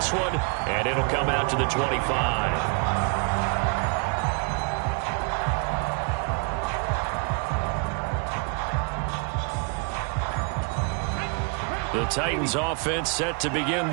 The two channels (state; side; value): quieter; left; 35.9 dB